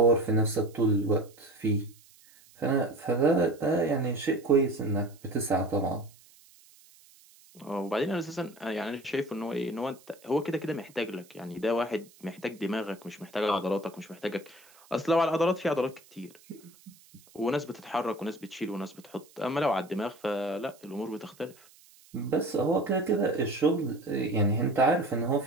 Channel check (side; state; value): right; noise; hiss, 26 dB below the sound